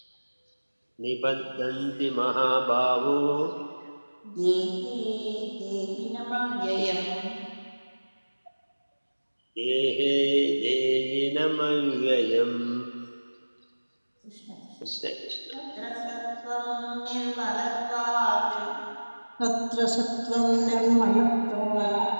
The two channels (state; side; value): inverted; both; correlation -1.00